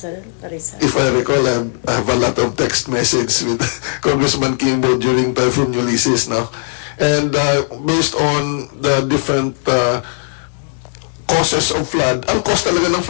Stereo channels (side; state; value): right; silent; digital silence